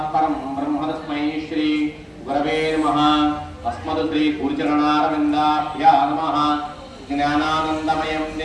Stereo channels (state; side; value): identical; both; correlation 1.00